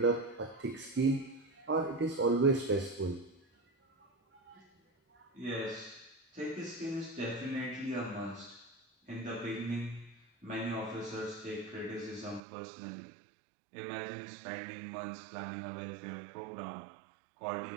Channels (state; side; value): drops out; left; at 12.4 s